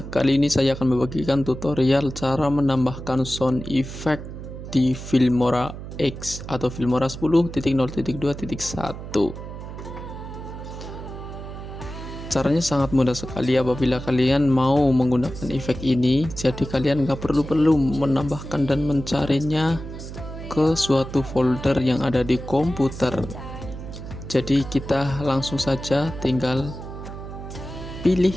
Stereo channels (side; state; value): right; noise; hum, 10 dB below the sound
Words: Kali ini saya akan membagikan tutorial cara menambahkan sound effect di Filmora X atau Filmora 10.0.2.1. Caranya sangat mudah sekali apabila kalian mau menggunakan efek ini. Jadi kalian nggak perlu menambahkan dan mencarinya ke suatu folder yang ada di komputer. Jadi kita langsung saja tinggal pilih